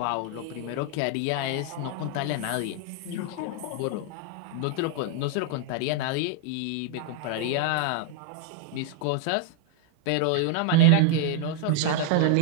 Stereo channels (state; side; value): different; both; correlation 0.00